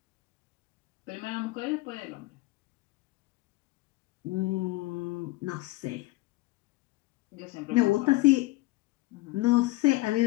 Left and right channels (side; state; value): right; quieter; 20.3 dB